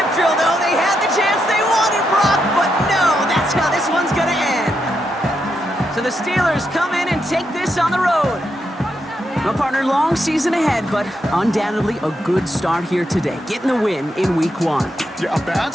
drill, though. They had the chance they wanted, Brock, but no, that's how this one's going to end. So the Steelers come in and take this on the road. No, partner, long season ahead, but undoubtedly a good start here today. Getting the win in week 1. Yeah, a bad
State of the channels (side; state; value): both; normal; correlation 0.82